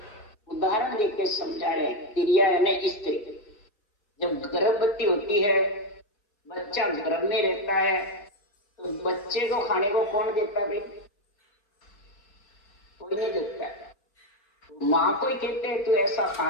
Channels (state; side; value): late; right; 4.7 ms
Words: उदाहरण देके समझा रहे, तिरिया यानी स्त्री जब गर्भवती होती है, बच्चा गर्भ में रहता है, तो बच्चे को खाने को कौन देता है भाई? कोई नहीं देता है। माँ को ही कहते हैं तू ऐसा